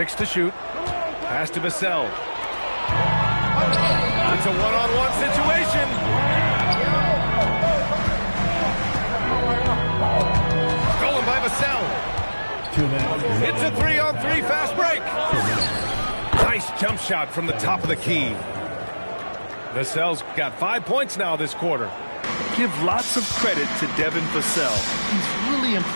to shoot. Pass to Vassell. It's a one-on-one situation. By Vassell. It's a 3-on-3 fast break. Nice jump shot from the top of the key. Vassell's got 5 points now this quarter. Give lots of credit to Devin Vassell. He's really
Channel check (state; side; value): inverted; both; correlation -1.00